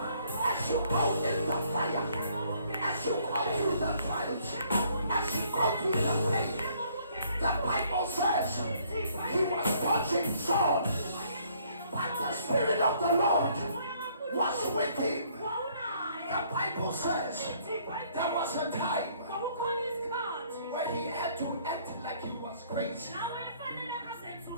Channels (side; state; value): both; inverted; correlation -0.64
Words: As you go in the fire, as you go through the trials, as you go through the pain, the Bible says he was watching Saul, but the Spirit of the Lord was with him. The Bible says there was a time where he had to act like he was crazy. There